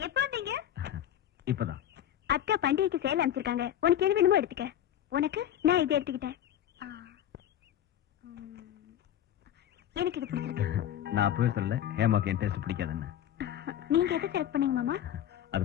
எப்ப வந்தீங்க? இப்பதான். அக்கா பண்டிகைக்கு சேலை அமைச்சிருக்காங்க, உனக்கு எது வேணுமோ எடுத்துக்க. உனக்கு நான் இதை எடுத்துக்கிட்டேன். எனக்கு இது பிடிச்சிருக்கு. நான் அப்பவே சொல்லல ஹேமாக்கு என் டேஸ்ட் பிடிக்காதுன்னு. நீங்க எதை செலக்ட் பண்ணீங்க மாமா? அது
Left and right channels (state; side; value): quieter; right; 11.1 dB